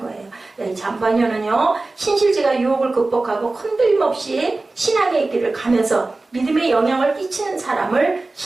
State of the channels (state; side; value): quieter; left; 3.3 dB